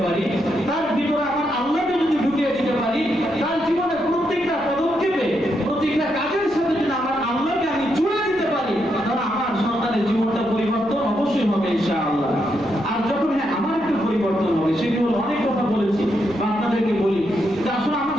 পারি, তার ভিতরে আমার আল্লাহকে যদি ঢুকিয়ে দিতে পারি, তার জীবনে প্রত্যেকটা পদক্ষেপে প্রত্যেকটা কাজের সাথে যদি আমার আল্লাহকে আমি জুড়ে দিতে পারি, তাহলে আমার সন্তানের জীবনটা পরিবর্তন অবশ্যই হবে ইনশাআল্লাহ। আর যখন আমার একটু পরিবর্তন হবে, সেটি হলো অনেক কথা বলেছি বা আপনাদেরকে বলি যে আসলে আমার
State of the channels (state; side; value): noise; left; rumble, 25 dB below the sound